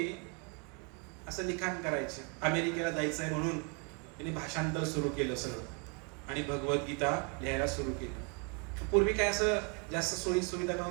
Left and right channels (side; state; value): left; quieter; 34.9 dB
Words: असं लिखाण करायचे, अमेरिकेला जायचंय म्हणून त्यांनी भाषांतर सुरू केलं सगळं आणि भगवद्गीता लिहायला सुरू केलं. पूर्वी काय असं जास्त सोयी सुविधा